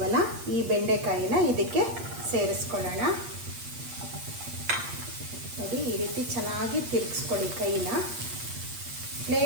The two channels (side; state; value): left; late; 8.5 ms